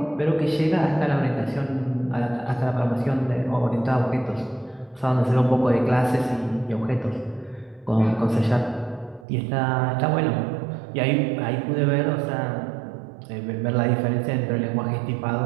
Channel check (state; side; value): drops out; left; at 9.2 s